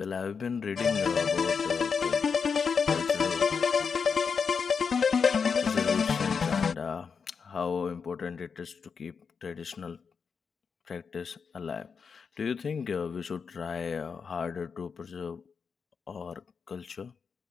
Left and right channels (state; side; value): quieter; right; 5.9 dB